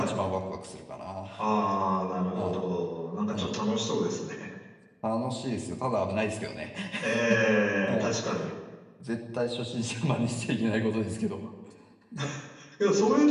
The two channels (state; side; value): identical; both; correlation 1.00